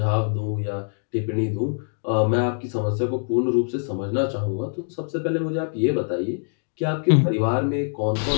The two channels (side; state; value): right; silent; digital silence